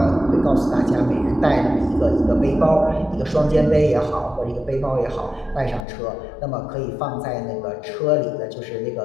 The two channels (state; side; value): drops out; right; at 5.9 s